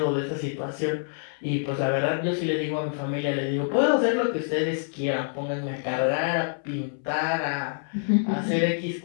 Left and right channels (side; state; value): right; silent; 61 dB below the other